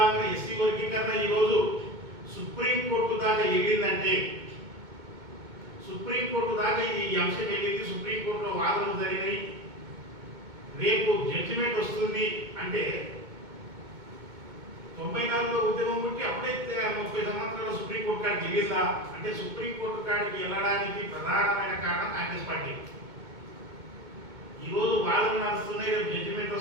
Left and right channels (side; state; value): left; late; 2.2 ms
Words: ఎస్సీ వర్గీకరణ ఈరోజు సుప్రీంకోర్టు దాకా వెళ్ళిందంటే, సుప్రీంకోర్టు దాకా ఈ అంశం వెళ్ళింది, సుప్రీంకోర్టులో వాదనలు జరిగినాయి, రేపు జడ్జిమెంట్ వస్తుంది అంటే 94లో ఉద్యమం ఉంటే అప్పుడే 30 సంవత్సరాల సుప్రీంకోర్టు కాడికి వెళ్ళిందా అంటే, సుప్రీంకోర్టు కాడికి వెళ్ళడానికి ప్రధానమైన కారణం కాంగ్రెస్ పార్టీ. ఈరోజు వాదనలు నడుస్తున్నాయి, రేపు జడ్జిమెంట్